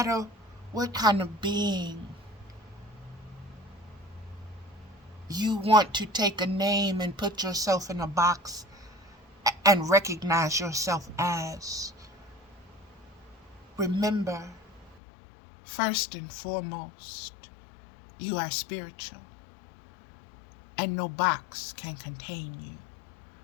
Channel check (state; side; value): drops out; right; at 15.0 s